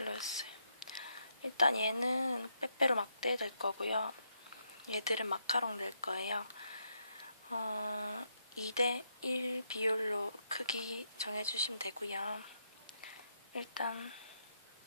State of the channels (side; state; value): both; inverted; correlation -0.78